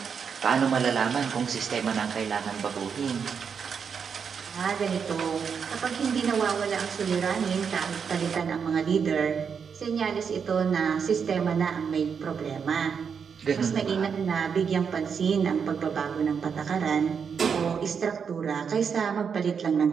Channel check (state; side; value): quieter; left; 6.5 dB